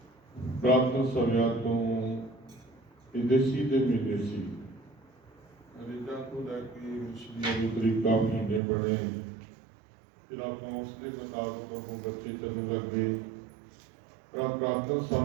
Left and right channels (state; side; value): drops out; left; at 8.6 s